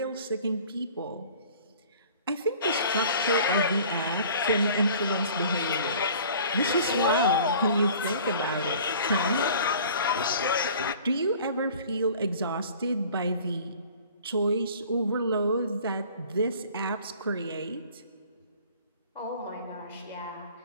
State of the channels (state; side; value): inverted; both; correlation -0.48